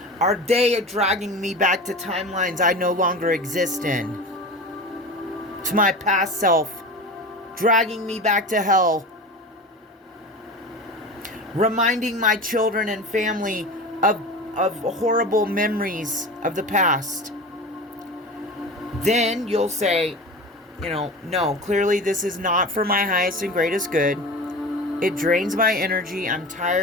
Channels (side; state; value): both; normal; correlation 0.31